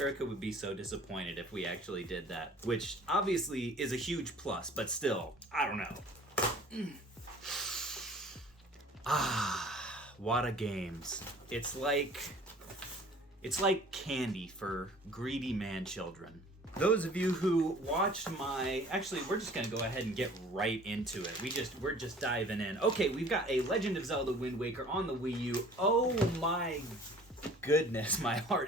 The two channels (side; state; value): both; normal; correlation 0.49